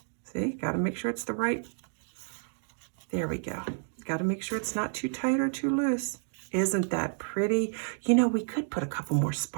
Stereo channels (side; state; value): left; silent; digital silence